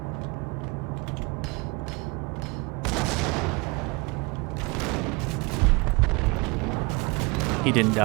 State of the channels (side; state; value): left; quieter; 27.0 dB